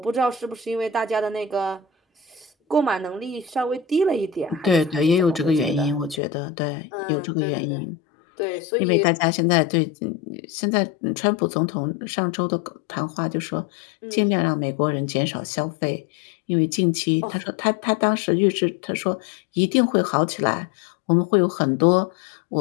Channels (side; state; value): right; drops out; at 6.2 s